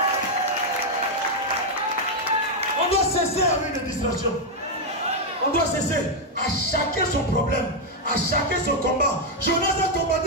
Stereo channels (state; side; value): normal; both; correlation 0.01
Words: On doit cesser avec les distractions. On doit cesser. À chacun son problème. À chacun son combat. Jonas a